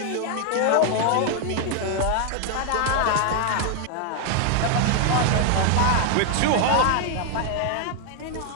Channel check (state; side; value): different; both; correlation 0.00